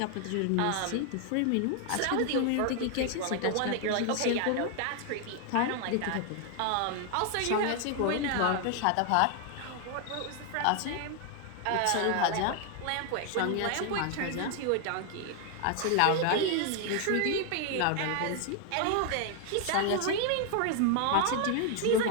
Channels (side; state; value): both; different; correlation 0.00